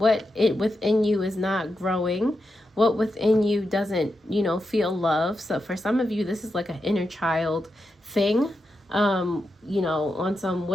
within you is not growing. What within you doesn't, feel love. So for some of you, this is like an inner child thing. On some,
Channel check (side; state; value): both; normal; correlation 0.87